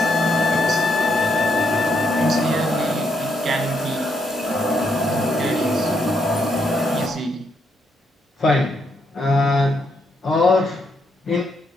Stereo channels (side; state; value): both; normal; correlation 0.77